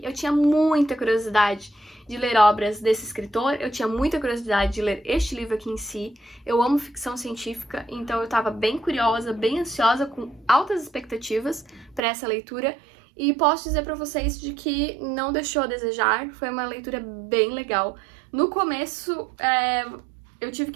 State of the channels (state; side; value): drops out; left; at 12.0 s